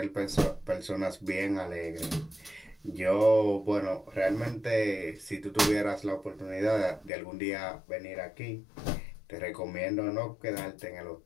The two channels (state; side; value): drops out; right; at 7.1 s